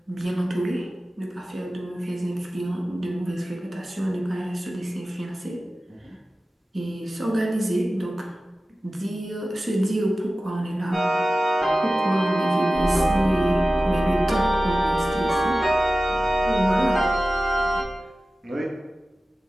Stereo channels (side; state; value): both; normal; correlation 0.96